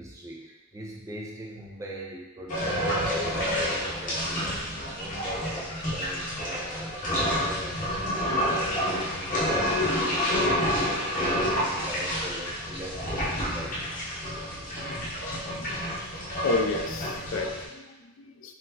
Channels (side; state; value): both; normal; correlation 0.16